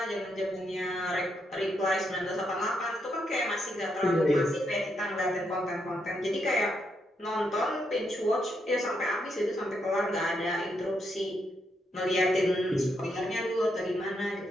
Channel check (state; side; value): normal; both; correlation 0.79